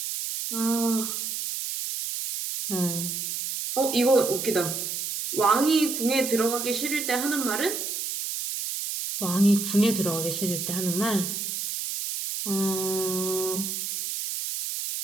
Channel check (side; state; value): right; noise; hiss, 4 dB below the sound